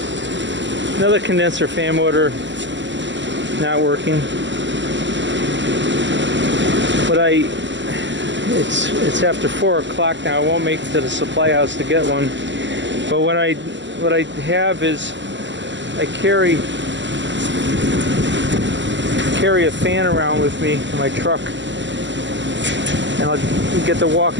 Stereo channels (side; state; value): left; late; 0.53 ms